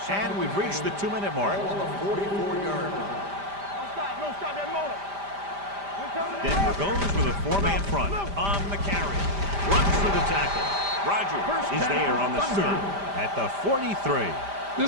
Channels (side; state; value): left; late; 5.0 ms